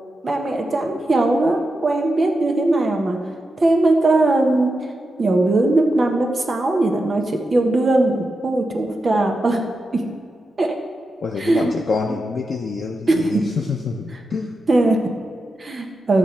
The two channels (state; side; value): normal; both; correlation 0.89